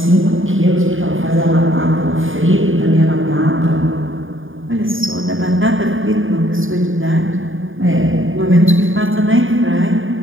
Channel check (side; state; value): left; late; 0.58 ms